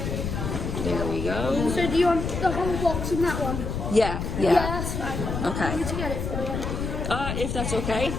there we go. So do you want the whole box in that one? Yeah. Yeah, that's fine. Okay. I need to get it for you. If that's okay.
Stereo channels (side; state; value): left; noise; rumble, 3 dB below the sound